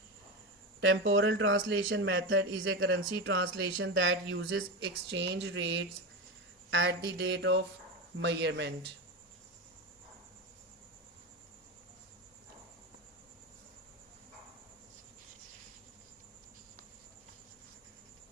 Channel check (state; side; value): normal; both; correlation 0.18